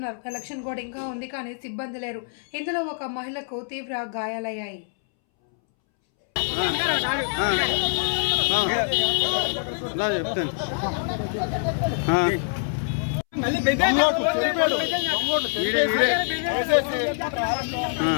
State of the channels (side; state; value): right; silent; 62 dB below the other